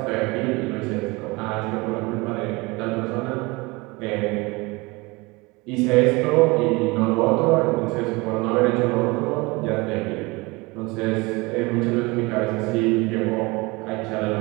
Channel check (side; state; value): left; quieter; 24.5 dB